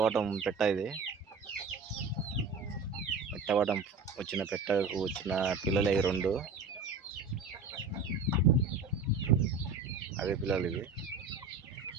పెట్ట. ఇది మిట్టవాటం వచ్చిన పెట్టకు వచ్చిన పిల్లలు ఇవి రెండు. అవే పిల్లలు ఇవి.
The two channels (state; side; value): quieter; left; 4.3 dB